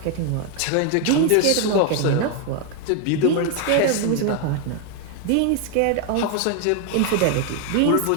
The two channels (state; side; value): different; both; correlation 0.01